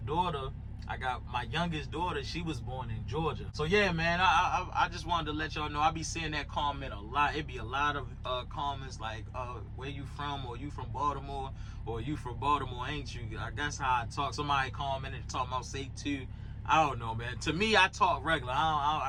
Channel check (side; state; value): both; identical; correlation 1.00